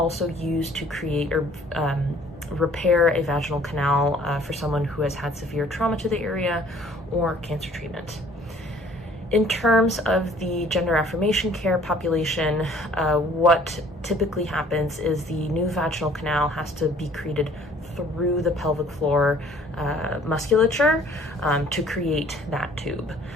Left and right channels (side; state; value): both; normal; correlation 0.56